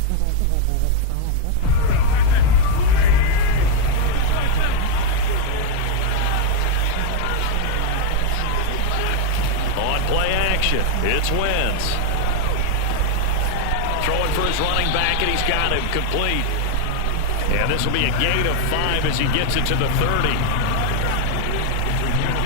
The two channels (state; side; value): different; both; correlation 0.01